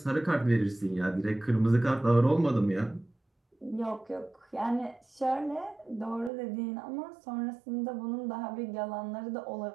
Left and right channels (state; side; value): drops out; left; at 6.3 s